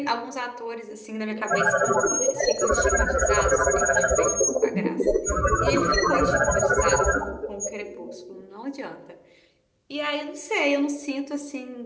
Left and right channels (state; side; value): identical; both; correlation 1.00